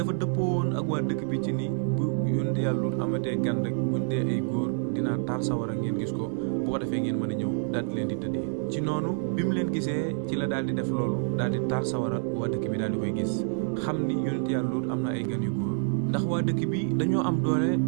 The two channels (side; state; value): left; silent; 60 dB below the other